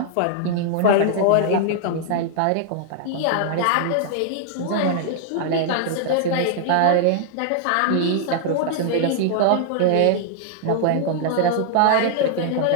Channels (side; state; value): both; different; correlation -0.01